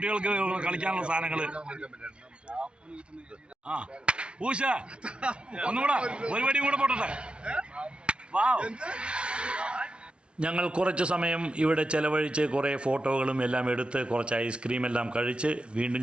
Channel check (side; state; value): left; late; 0.058 ms